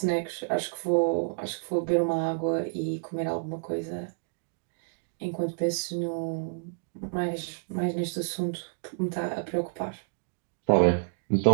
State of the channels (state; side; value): silent; left; digital silence